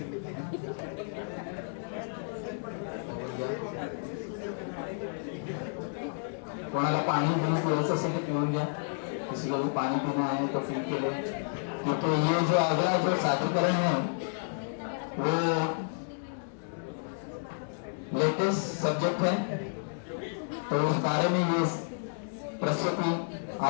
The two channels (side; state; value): right; silent; digital silence